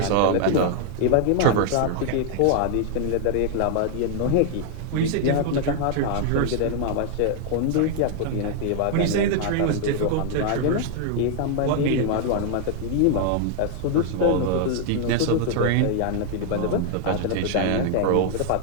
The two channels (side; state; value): both; different; correlation 0.00